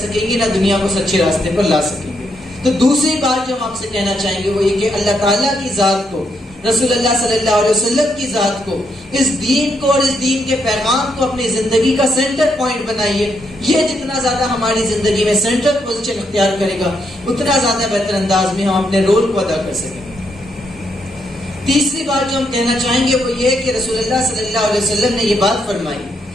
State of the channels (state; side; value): normal; both; correlation 0.78